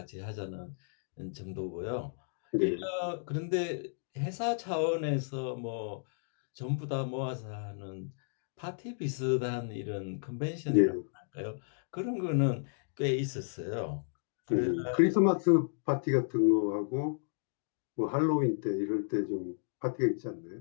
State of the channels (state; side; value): silent; right; digital silence